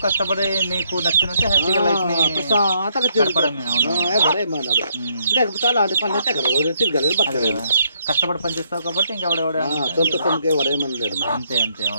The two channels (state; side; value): inverted; both; correlation -0.72